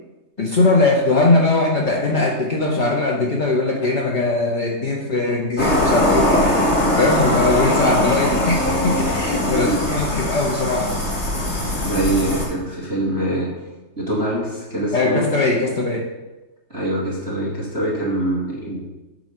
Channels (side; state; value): left; late; 3.3 ms